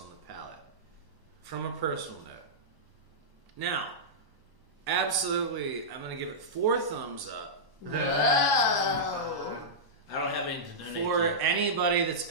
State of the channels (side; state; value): left; late; 1.1 ms